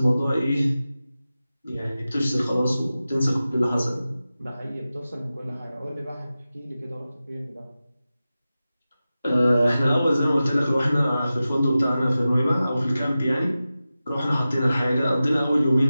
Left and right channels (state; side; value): inverted; both; correlation -0.95